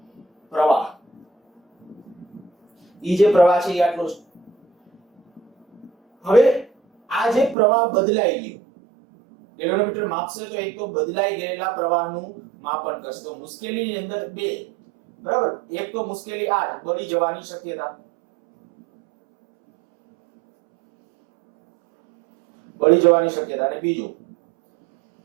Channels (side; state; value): left; drops out; at 7.6 s